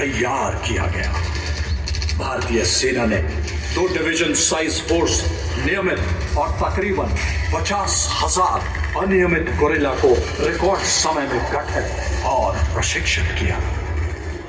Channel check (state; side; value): identical; both; correlation 1.00